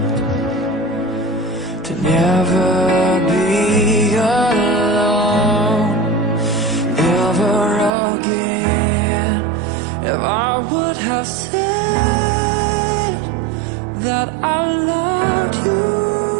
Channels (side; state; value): left; drops out; at 7.9 s